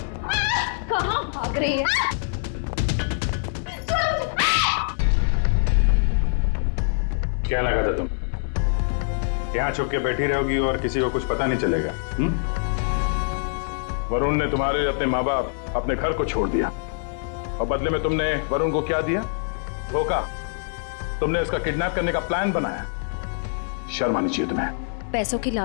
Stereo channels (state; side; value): silent; right; 62 dB below the other